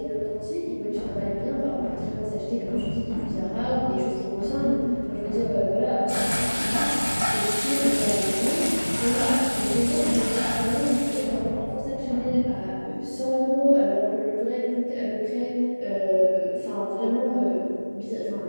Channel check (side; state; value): both; inverted; correlation -1.00